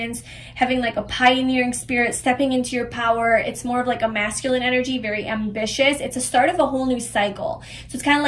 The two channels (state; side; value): identical; both; correlation 1.00